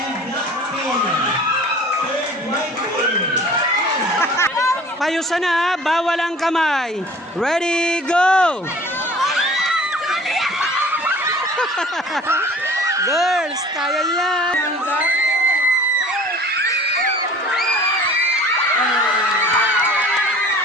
black Payusan na, bawal ang kamay. Ready, go! Girls, kaya yan. Right,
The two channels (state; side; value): normal; both; correlation 0.46